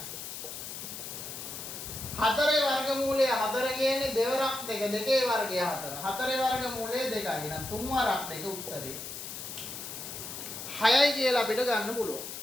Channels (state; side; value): noise; left; hiss, 8 dB below the sound